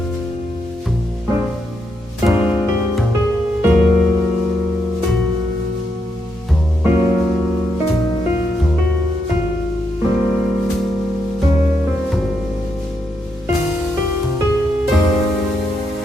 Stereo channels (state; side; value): normal; both; correlation 0.80